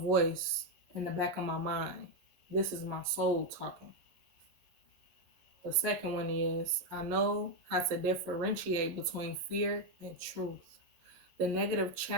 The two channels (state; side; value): late; left; 11 ms